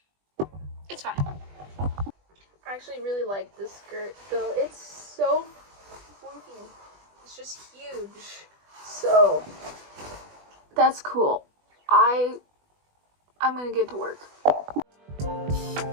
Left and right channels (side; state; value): left; late; 20 ms